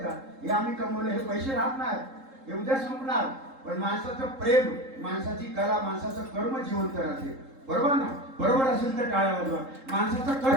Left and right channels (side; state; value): left; late; 3.8 ms